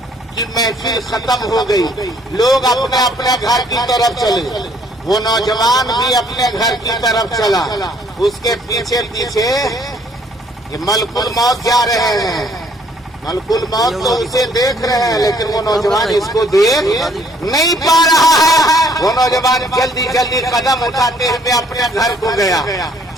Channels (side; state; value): both; normal; correlation 0.63